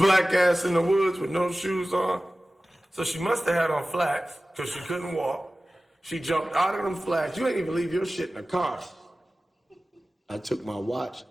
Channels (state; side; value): normal; both; correlation 0.96